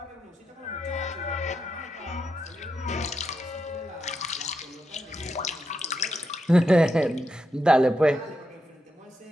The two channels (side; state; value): both; normal; correlation 0.85